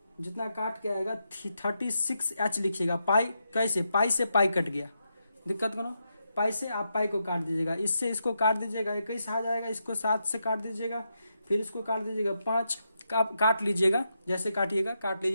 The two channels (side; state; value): both; inverted; correlation -0.84